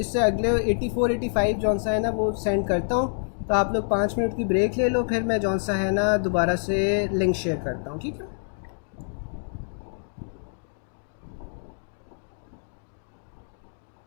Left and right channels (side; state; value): right; silent; digital silence